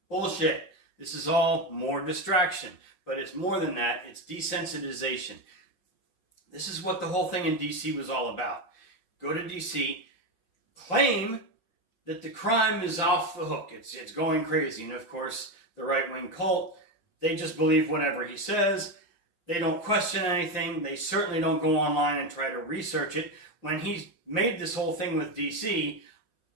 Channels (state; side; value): late; right; 5.8 ms